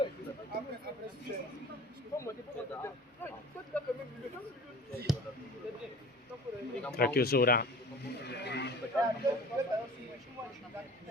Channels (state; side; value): normal; both; correlation 0.43